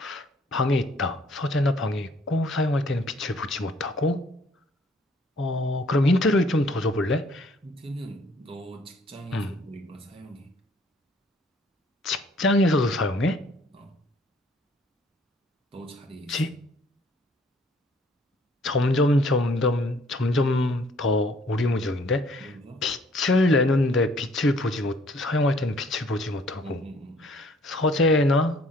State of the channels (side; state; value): both; normal; correlation 0.59